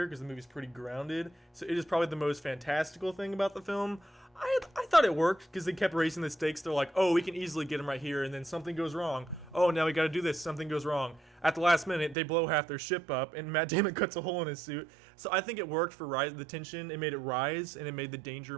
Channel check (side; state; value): left; drops out; at 12.2 s